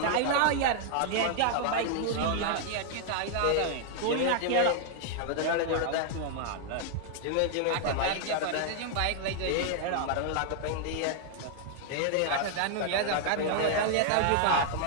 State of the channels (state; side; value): different; both; correlation 0.00